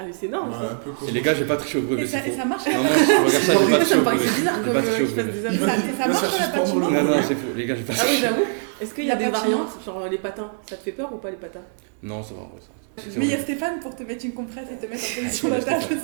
mais c'est énorme Ouais, ça. un peu comme. Et les gars, j'ai pas triché au brevet, Et ça, c'est et faux. ça marche Non, je regarde ça, j'ai pas triché Ça me au brevet. paraissait bizarre J'ai comme pas triché au qu'ils fassent brevet. des Et amis. ça, et ça Là, marche ça à la suspend patinoire. dans le- Non, c'est faux. Les gars, j'ai pas Ah oui, triché. j'avoue. Est-ce qu'il y a La des patinoire. variantes, genre les patins? Ça te fait peur ou pas les patins? Non, ça va, en vrai, ça. Mais il y a Stéphane pour te mettre une compresse et te mettre en position Ouais, d'attache de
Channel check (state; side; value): silent; left; 64 dB below the other